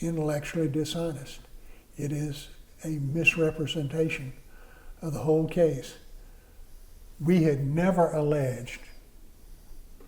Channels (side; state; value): both; identical; correlation 1.00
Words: intellectually dishonest. It is a misrepresentation of the whole case. We had never alleged